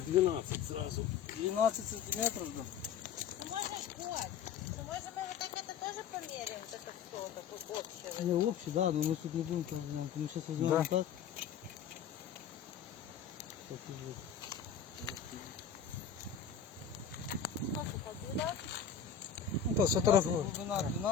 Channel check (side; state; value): right; quieter; 7.6 dB